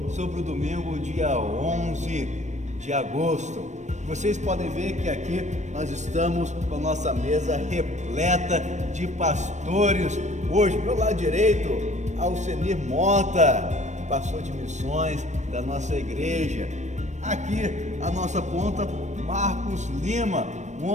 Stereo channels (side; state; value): left; late; 0.34 ms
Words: sobre o domingo, dia 11 de agosto. Vocês podem ver que aqui nós estamos com a nossa mesa repleta de pastores. Hoje, pelo lado direito, Alcenir Mota, pastor de missões da nossa igreja. Aqui, a nossa ponta, Marcos Lima, um